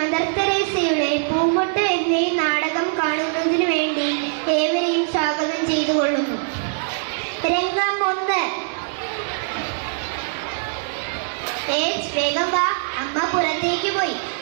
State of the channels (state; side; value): silent; left; digital silence